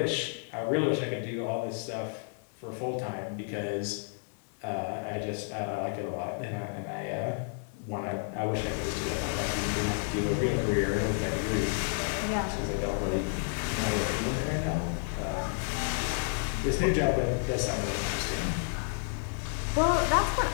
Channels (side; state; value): right; silent; 57 dB below the other